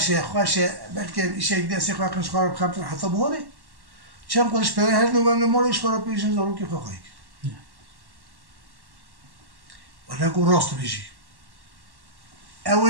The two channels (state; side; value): late; left; 1.1 ms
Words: خوشه بلکه ایشه یک دستی خواه کنشخار بخمتر حتی بهاره چند قدش پره هر نوگنده مالش خورا پیشن زارو که خواهی کرد ولی گو راست بیشی